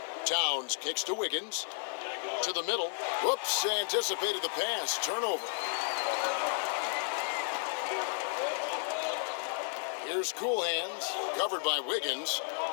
Towns kicks to Wiggins. To the middle. Whoops, anticipated the pass. Turnover. Here's Cool Hands, covered by Wiggins.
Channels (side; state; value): right; silent; 56 dB below the other